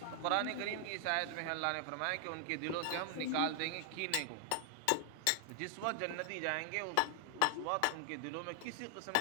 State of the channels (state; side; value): different; both; correlation 0.00